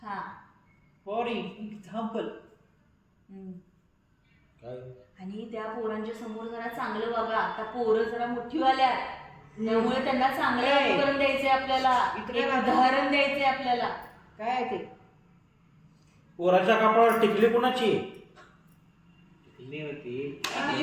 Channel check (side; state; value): both; identical; correlation 1.00